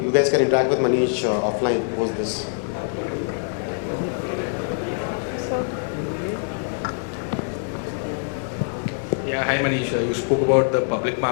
you guys can interact with Manish offline post this. Yeah, hi Manish. You spoke about the public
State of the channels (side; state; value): right; silent; digital silence